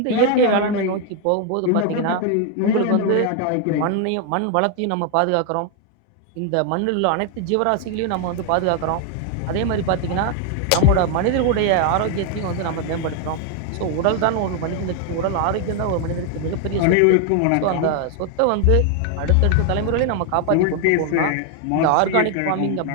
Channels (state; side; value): different; both; correlation 0.00